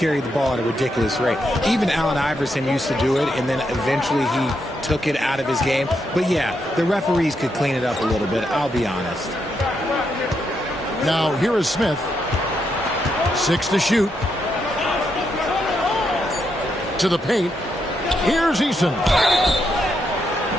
the ball at a ridiculous rate. Even Allen Iverson used to do it, and then eventually he took it out of his game. But yeah, the referees could clean it up a little bit, I'll be honest. Now here is Smith. 6 to shoot. To the paint. Here's Eason.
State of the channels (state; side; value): normal; both; correlation 0.80